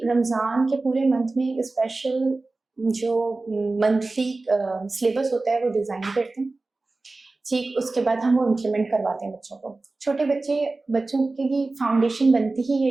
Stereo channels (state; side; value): quieter; left; 3.3 dB